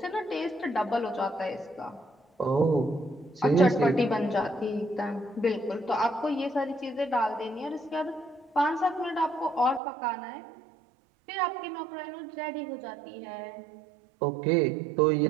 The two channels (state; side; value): drops out; left; at 9.8 s